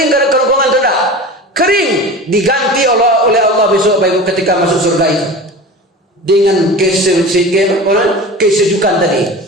karena kerongkongan tidak? Kering, diganti oleh Allah besok, Pak Ibu, ketika masuk surga itu dengan kesejukan tadi.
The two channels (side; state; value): both; normal; correlation 0.33